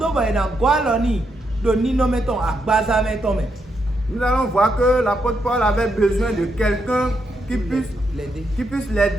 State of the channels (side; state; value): both; normal; correlation 0.80